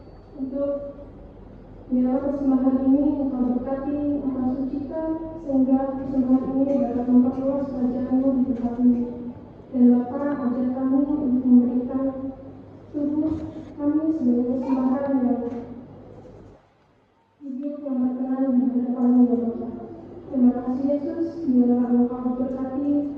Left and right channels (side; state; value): both; identical; correlation 1.00